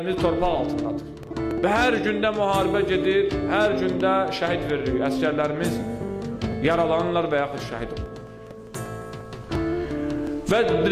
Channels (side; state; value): both; identical; correlation 1.00